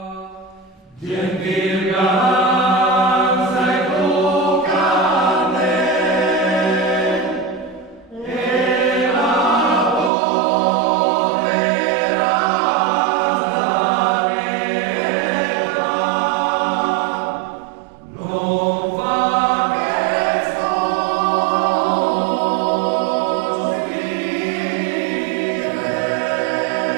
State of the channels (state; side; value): drops out; left; at 10.1 s